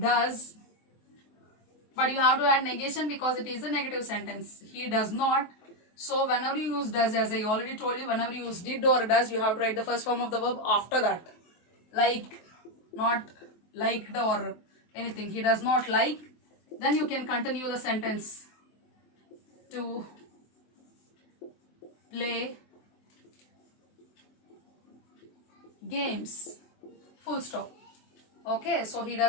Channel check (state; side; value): late; right; 23 ms